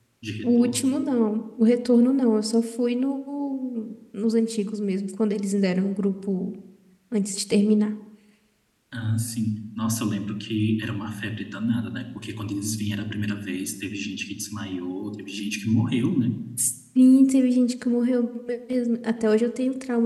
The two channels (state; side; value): identical; both; correlation 1.00